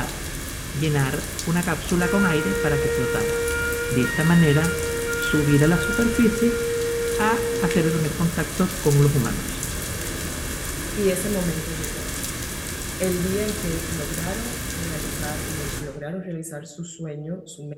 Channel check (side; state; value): both; identical; correlation 1.00